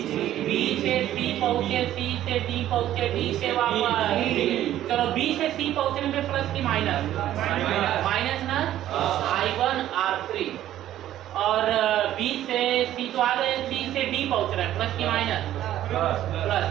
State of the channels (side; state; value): left; quieter; 12.6 dB